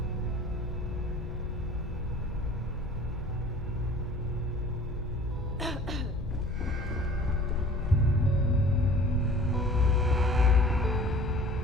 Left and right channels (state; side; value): normal; both; correlation 0.47